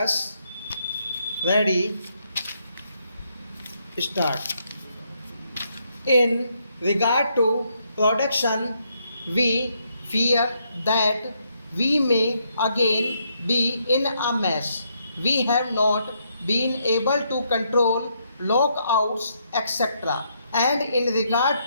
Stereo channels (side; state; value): both; inverted; correlation -0.75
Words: ready, start. In regard to production, we fear that we may again be in a mess. We have not been able to control lockouts, etc. And in